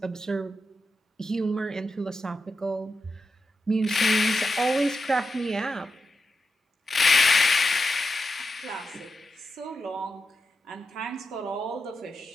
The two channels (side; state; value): both; normal; correlation 0.88